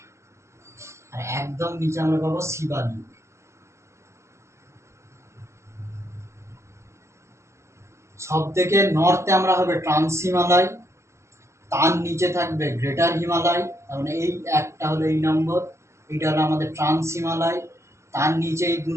আর একদম নিচে আমরা পাবো শিবালিক। সব থেকে নর্থে আমরা হবে ট্রান্স হিমালয়, তার নিচে থাকবে গ্রেটার হিমালয়, তার মানে এই একটা হলো এই নম্বর, এইটা হলো আমাদের ট্রান্স হিমালয়, তার নিচে এই 2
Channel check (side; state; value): left; late; 0.13 ms